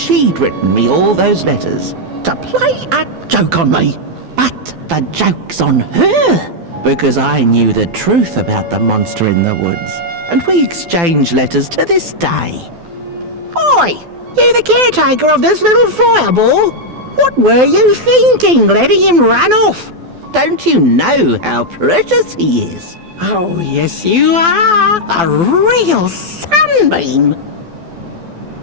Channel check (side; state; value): left; late; 12 ms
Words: written me all those letters to play a joke on me. But the joke's on her, because I knew the truth about the monster in the woods, and we exchange letters to this day. Oi! You the caretaker of this little fireball? What were you thinking, letting him run off? Don't you know how precious he is? Oh, yes you are. A real sunbeam.